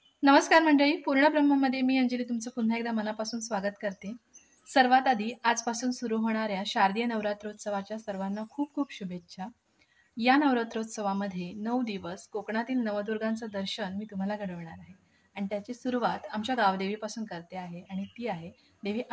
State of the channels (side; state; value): both; identical; correlation 1.00